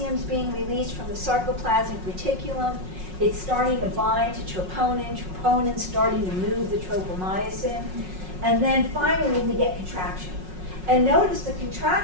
being released from the sarcoplasmic reticulum. It's starting to bind to troponin. Troponin's starting to move the tropomyosin. And then finally, we get contraction. And notice the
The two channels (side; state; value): left; late; 5.4 ms